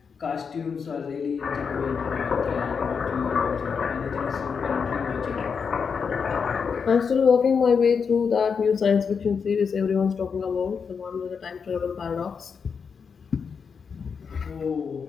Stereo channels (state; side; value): quieter; right; 6.0 dB